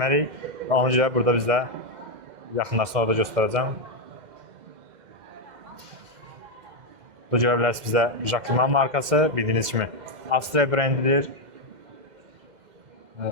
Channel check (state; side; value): late; left; 2.1 ms